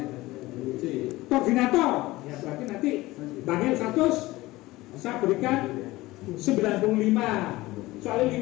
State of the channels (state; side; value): quieter; right; 19.0 dB